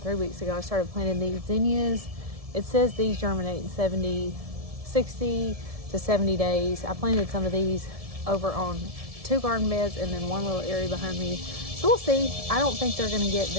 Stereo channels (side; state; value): left; late; 1.7 ms